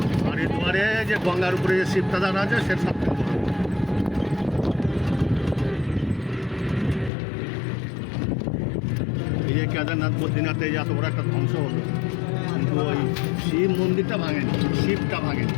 হরিদ্বারে যে গঙ্গার উপরে যে শিবটা দাঁড়া আছে সেটা সব থেকে বড়। এই যে কেদারনাথ বদ্রীনাথে যে এত বড় একটা ধ্বংস হলো, কিন্তু ওই শিব মন্দিরটা ভাঙেনি, শিবটা ভাঙেনি।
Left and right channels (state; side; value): drops out; right; at 7.1 s